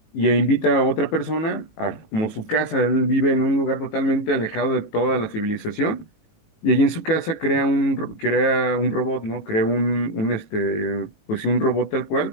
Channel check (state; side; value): late; right; 18 ms